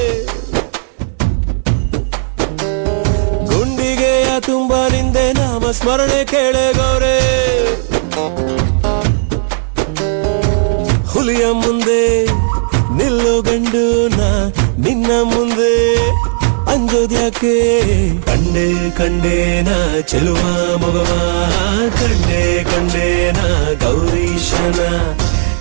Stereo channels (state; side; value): silent; left; digital silence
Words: ಗುಂಡಿಗೆಯ ತುಂಬ ನಿಂದೆ ನಾಮ ಸ್ಮರಣೆ ಕೇಳೆ ಗೌರಿ ಹುಲಿಯ ಮುಂದೆ ನಿಲ್ಲು ಗಂಡು ನಾ ನಿನ್ನ ಮುಂದೆ ಅಂಜೋದ್ಯಾಕೆ ಕಂಡೆ ಕಂಡೇನ ಚೆಲುವ ಮಗವ ಕಂಡೆ ಕಂಡೇನ ಗೌರೀಶನ